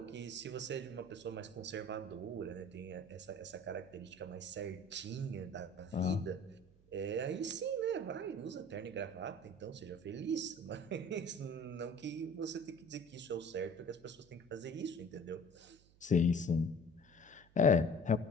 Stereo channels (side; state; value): right; noise; hum, 27 dB below the sound